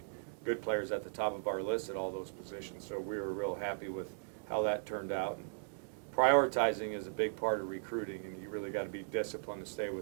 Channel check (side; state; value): left; silent; digital silence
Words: good players at the top of our list at all those positions. So we were real happy with how that turned out. And prioritizing is a big part of recruiting, and you really got to be disciplined to stay